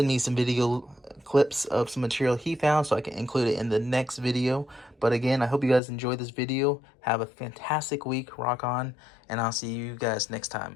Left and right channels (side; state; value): right; drops out; at 5.8 s